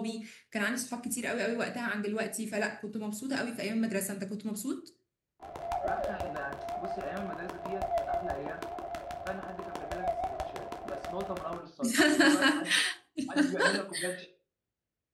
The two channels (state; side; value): identical; both; correlation 1.00